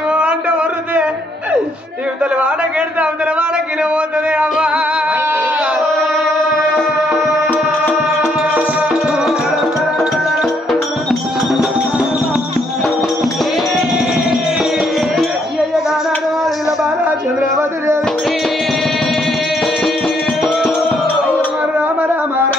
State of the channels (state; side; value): normal; both; correlation 0.71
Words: అంటే వరుదే ఇవతల వాడకెడితే అవతల వాడకిన పోతుంది అమ్మా చంద్రవతి దేవి